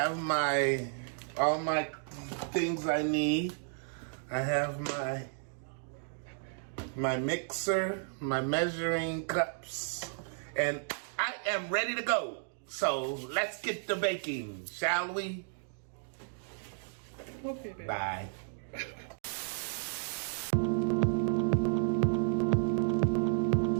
all my things I need. I have my mixer, my measuring cups, and I am ready to go. So let's get to baking, shall we? Okay, baby. Bye.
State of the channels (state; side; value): silent; left; digital silence